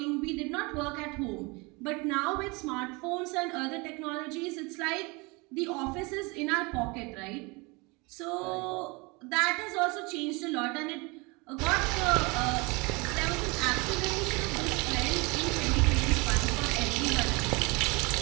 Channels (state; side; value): quieter; left; 27.1 dB